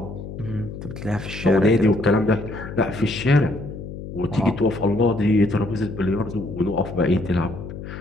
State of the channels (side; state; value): left; noise; hum, 10 dB below the sound